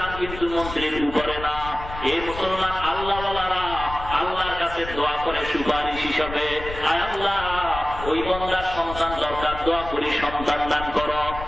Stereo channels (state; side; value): noise; left; rumble, 11 dB below the sound